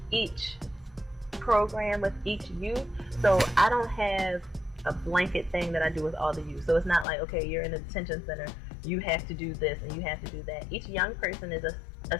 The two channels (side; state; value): right; drops out; at 7.1 s